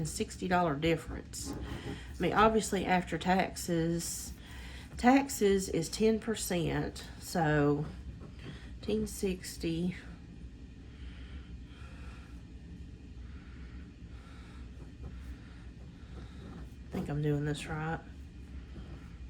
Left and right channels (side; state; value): both; identical; correlation 1.00